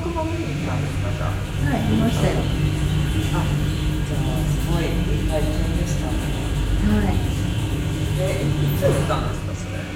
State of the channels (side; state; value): both; identical; correlation 1.00